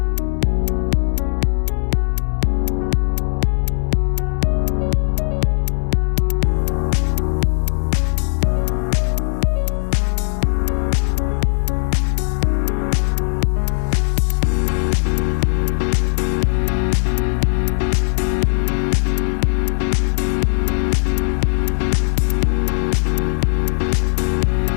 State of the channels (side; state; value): right; silent; digital silence